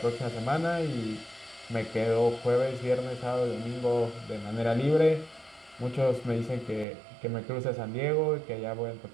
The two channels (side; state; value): left; drops out; at 6.9 s